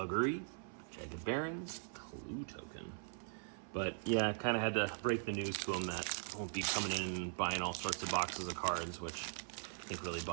Jagged Barons, Clue Token. But yeah, I kind of had to break the news to them that I won't be coming in and buying all sorts of boxes of cards, which I think really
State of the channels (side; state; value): left; silent; 51 dB below the other